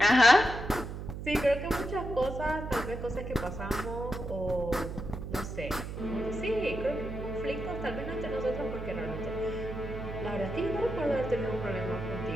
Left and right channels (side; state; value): right; noise; hum, 7 dB below the sound